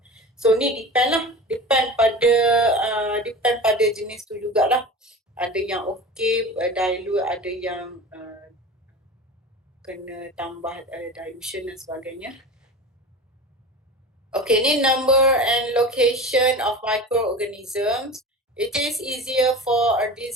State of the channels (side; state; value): both; normal; correlation 0.33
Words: So ni depend pada jenis tu jugalah. Ada yang okay dilute, ada yang kena tambah dilution dan sebagainya. Okay, ni number and location of microorganisms. It is easier for a